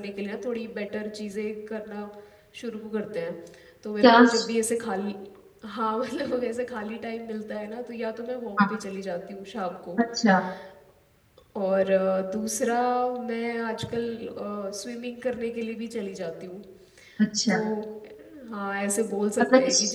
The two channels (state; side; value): identical; both; correlation 1.00